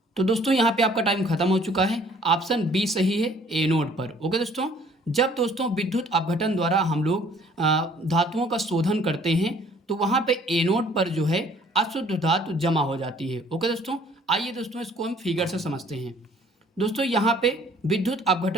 तो दोस्तों यहाँ पे आपका टाइम खत्म हो चुका है, ऑप्शन बी सही है, एनोड पर। ओके दोस्तों, जब दोस्तों विद्युत अपघटन द्वारा हम लोग धातुओं का शोधन करते हैं तो वहाँ पे एनोड पर जो है अशुद्ध धातु जमा हो जाती है। ओके दोस्तों, आइए दोस्तों इसको हम फिगर से समझते हैं। दोस्तों यहाँ पे विद्युत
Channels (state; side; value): normal; both; correlation 0.57